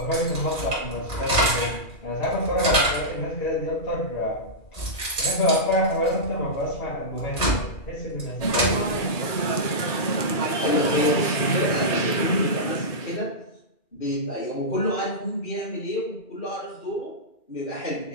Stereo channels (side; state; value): right; late; 2.4 ms